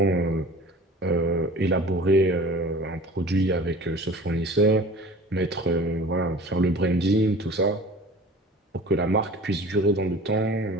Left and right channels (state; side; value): normal; both; correlation 0.42